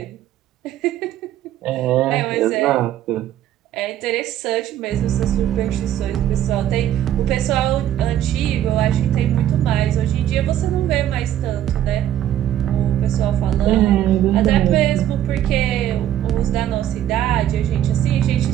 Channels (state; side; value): quieter; left; 11.7 dB